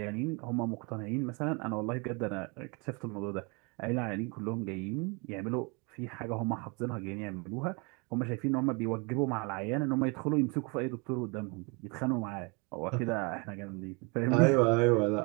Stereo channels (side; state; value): left; quieter; 30.9 dB